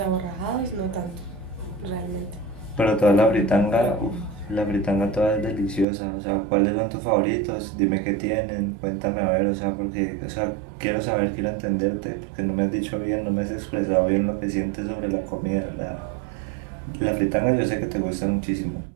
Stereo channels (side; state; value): left; drops out; at 5.9 s